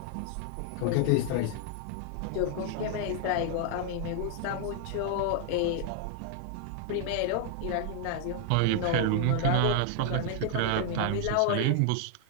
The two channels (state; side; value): different; both; correlation 0.00